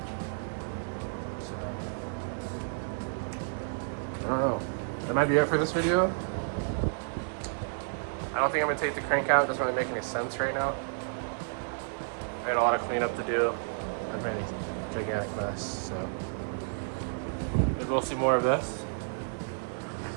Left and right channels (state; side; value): silent; left; digital silence